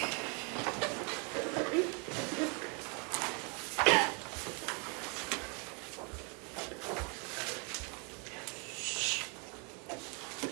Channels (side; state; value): left; quieter; 34.3 dB